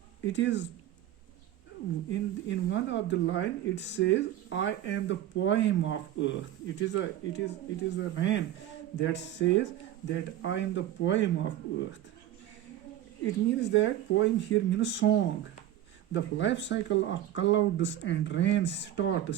it is in one of the line it says, I am the poem of earth. It is a rain that says that I am the poem of earth. It means that poem here means song. The life cycle of clouds and rain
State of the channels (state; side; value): quieter; left; 12.4 dB